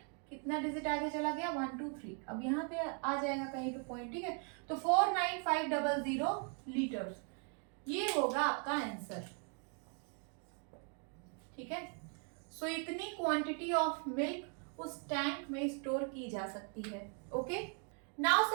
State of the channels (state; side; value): quieter; left; 39.7 dB